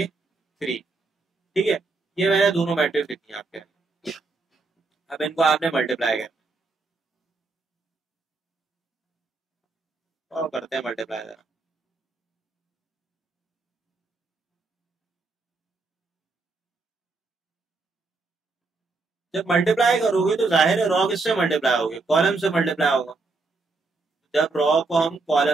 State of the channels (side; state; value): left; quieter; 3.7 dB